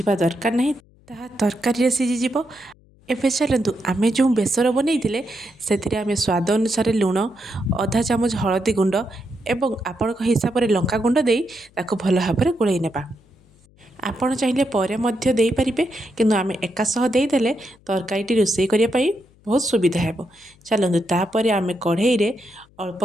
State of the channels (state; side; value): noise; left; hum, 30 dB below the sound